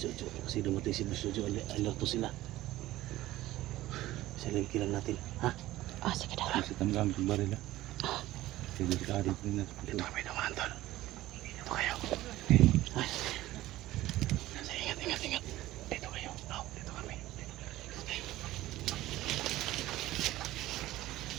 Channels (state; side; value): quieter; left; 16.1 dB